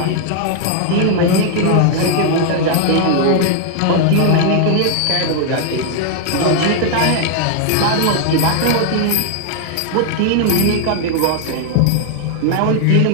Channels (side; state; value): both; different; correlation 0.00